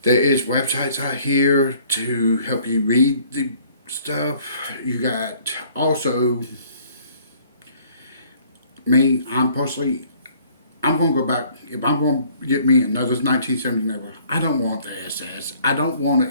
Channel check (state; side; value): inverted; both; correlation -0.58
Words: There is websites out here to help you read the stuff. You got also me. I'm going to go back. If I'm going to get me another 1970 Nova, I don't want the SS. I don't want an